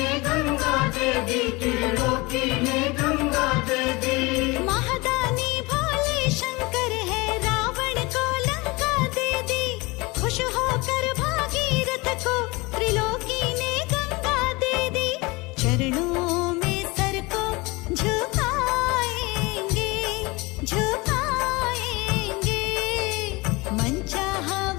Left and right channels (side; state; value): right; quieter; 24.3 dB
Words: गंगा दे दी, त्रिलोकी ने गंगा दे दी। महादानी भोले शंकर है, रावण को लंका दे दी। खुश होकर भागीरथ को त्रिलोकी ने गंगा दे दी। चरणों में सर को झुकाएंगे, झुकाएंगे। मन चाहा